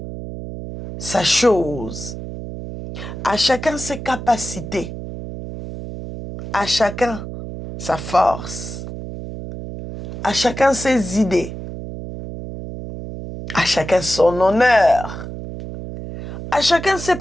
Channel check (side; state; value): right; noise; hum, 9 dB below the sound